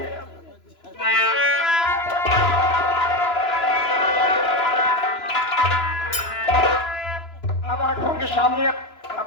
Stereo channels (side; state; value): right; late; 3.0 ms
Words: अब आंखों के सामने